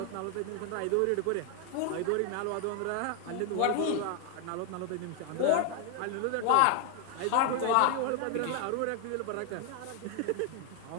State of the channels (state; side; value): different; both; correlation 0.00